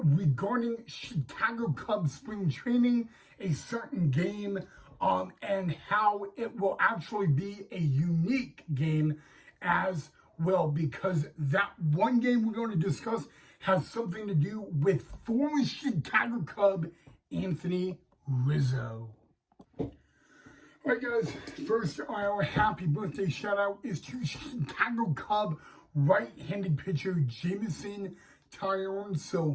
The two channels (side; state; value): both; identical; correlation 1.00